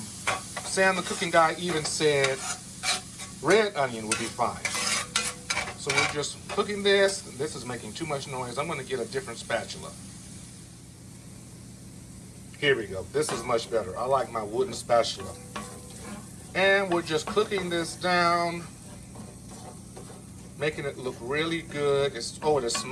Sam the cooking guy even said red onion would be fine. So we're just cooking this. This is making too much noise. I'm gonna get a different spatula. Here we go. This is much better. I like my wooden spatula. And we're just cooking this down, making it look really good. It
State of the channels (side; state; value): both; identical; correlation 1.00